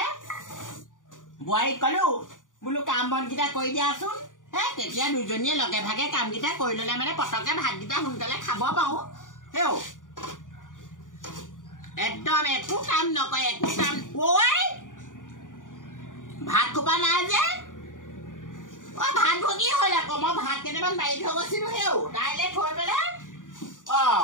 বোৱাৰীক ক'লো বোলো কাম বনকেইটা কৰি দিয়াচোন হে তেতিয়া দুজনীয়ে লগে ভাগে কামকেইটা কৰি ল'লে মানে পটককৈ ভাতকেইটা সোনকালে খাব পাৰোঁ হেও একদম একো কাম নকৰে একো কাম ঐ ভাত খোপা নাই যে ভাত ভগি হ'ল আকৌ মই ভাত কেইটামান বাঢ়ি থৈ গৈছিলোঁ হেও দাইলে থৈ পেলাই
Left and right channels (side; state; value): right; late; 0.88 ms